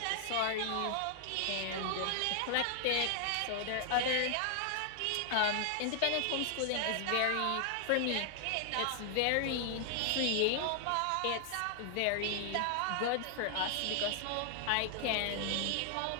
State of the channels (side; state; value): both; different; correlation 0.00